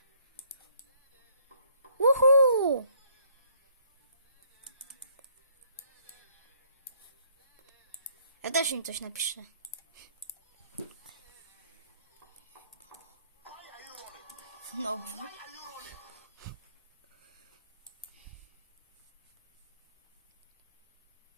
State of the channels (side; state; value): both; inverted; correlation -0.64